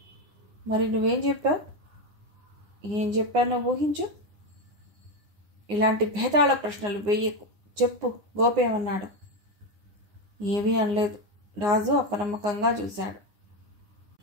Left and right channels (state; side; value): late; left; 9.7 ms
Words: మరి నువ్వేం చెప్పావు? ఏం చెప్పానో ఊహించు. ఇలాంటి భేదాళ ప్రశ్నలు వెయ్యకు. చెప్పు, గోపి ఏమన్నాడు? ఏమీ అనలేదు. రాజు అపనమ్మకంగా చూశాడు.